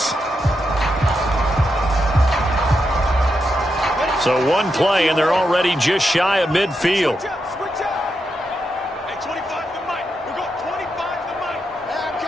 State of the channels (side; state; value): both; normal; correlation 0.85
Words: So one play, and they're already just shy of midfield.